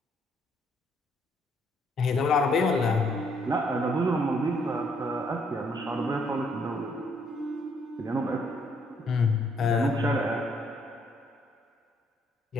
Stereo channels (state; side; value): normal; both; correlation 0.68